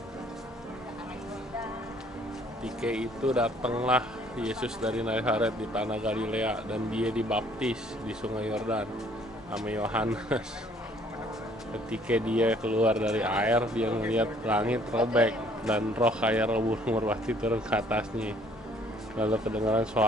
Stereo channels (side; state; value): both; normal; correlation 0.60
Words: Ketika itu datanglah Yesus dari Nazaret di tanah Galilea dan dia dibaptis di Sungai Yordan sama Yohanes. Ketika dia keluar dari air, dia melihat langit robek dan roh kayak burung merpati turun ke atasnya. Lalu kedengaran